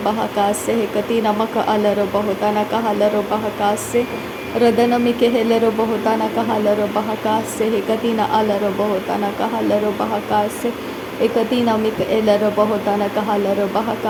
hekati namaka alaro bohotana kahalaro bahakase Radanamike helaro bohotana kahalaro bahakase hekati na alaro bohotana kahalaro bahakase Ekatina mika elaro bahotana kahalaro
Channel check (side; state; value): both; identical; correlation 1.00